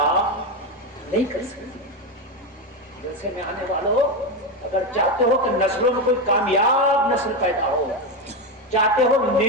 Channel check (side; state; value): both; normal; correlation 0.13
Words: نہیں کر سکتی۔ جیسے میں آنے والوں، اگر چاہتے ہو کہ نسلوں میں کوئی کامیاب نسل پیدا ہو، چاہتے ہو